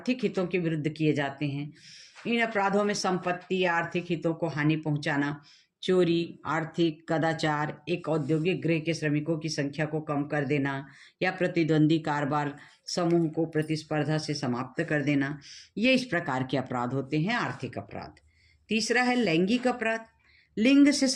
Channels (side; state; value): both; identical; correlation 1.00